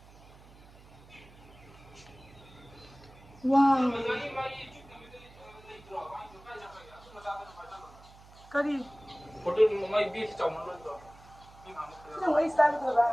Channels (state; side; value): noise; right; hum, 22 dB below the sound